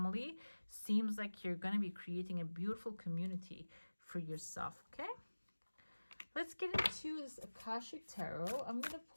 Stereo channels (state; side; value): inverted; both; correlation -1.00